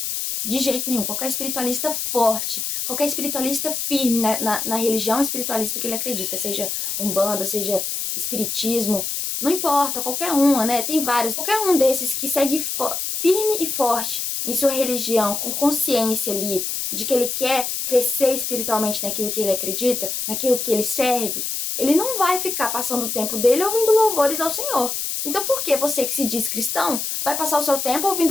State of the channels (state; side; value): noise; left; hiss, 2 dB below the sound